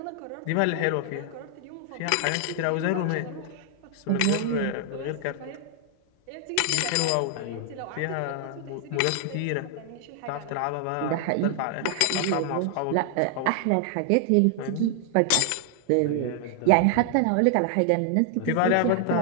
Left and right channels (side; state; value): both; different; correlation 0.00